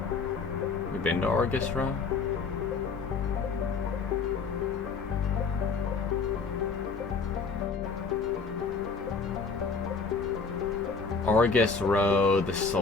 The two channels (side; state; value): right; quieter; 4.8 dB